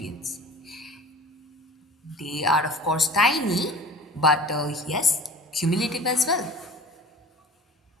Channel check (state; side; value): normal; both; correlation 0.41